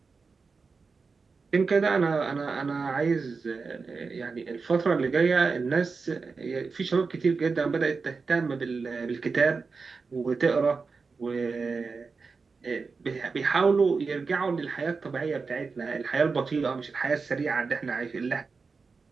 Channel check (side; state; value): left; quieter; 4.6 dB